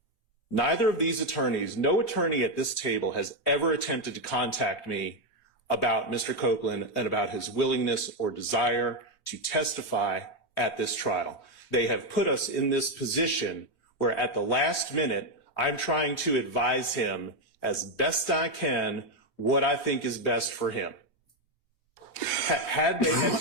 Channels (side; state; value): right; late; 3.2 ms